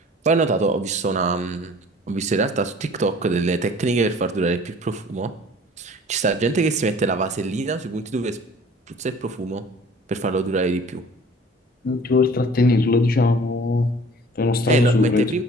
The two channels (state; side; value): normal; both; correlation 0.48